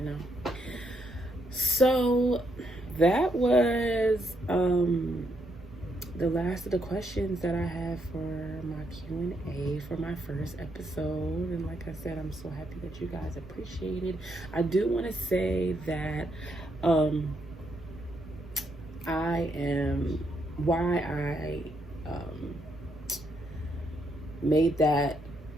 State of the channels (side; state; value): both; normal; correlation 0.77